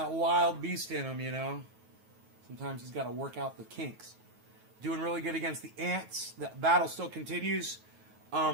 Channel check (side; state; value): left; late; 9.3 ms